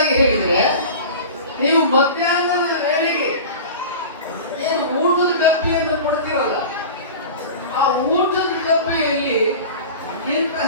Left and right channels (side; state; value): both; inverted; correlation -0.35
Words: ಹೇಳಿದ್ರೆ, ನೀವು ಮಧ್ಯಾಹ್ನದ ವೇಳೆಗೆ ಏನು ಊಟದ ಡಬ್ಬಿಯನ್ನು ಕೊಡ್ತೀರಲ್ಲ, ಆ ಊಟದ ಡಬ್ಬಿಯಲ್ಲಿ